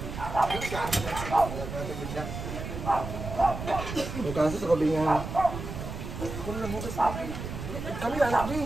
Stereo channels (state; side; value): noise; right; rumble, 7 dB below the sound